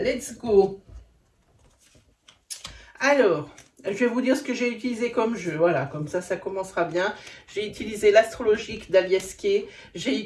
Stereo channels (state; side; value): identical; both; correlation 1.00